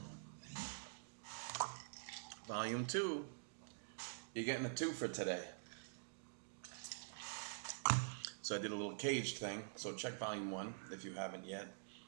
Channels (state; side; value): silent; left; digital silence